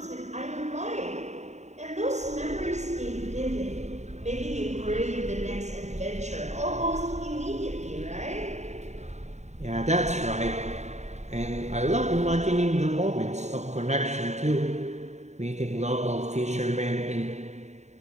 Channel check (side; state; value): left; late; 0.33 ms